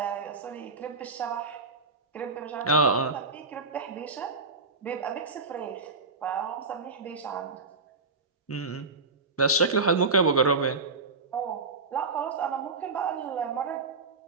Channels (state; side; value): quieter; left; 3.9 dB